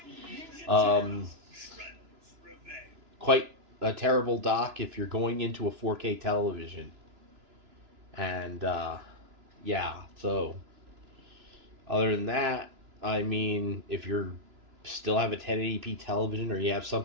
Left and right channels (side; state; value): left; late; 2.9 ms